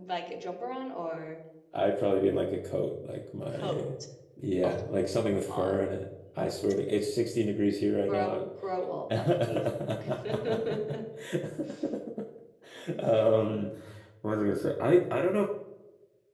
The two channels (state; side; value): identical; both; correlation 1.00